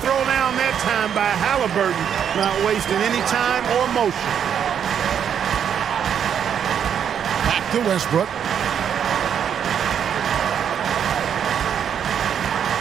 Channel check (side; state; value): left; quieter; 8.4 dB